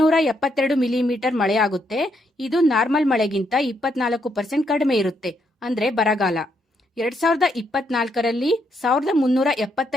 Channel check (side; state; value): both; normal; correlation 0.76